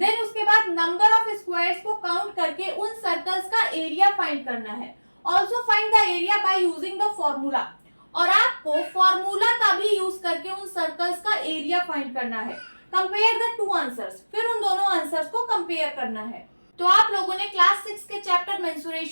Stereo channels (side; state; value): both; inverted; correlation -1.00